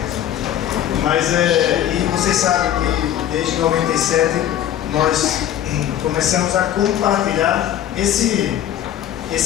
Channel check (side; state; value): right; quieter; 11.1 dB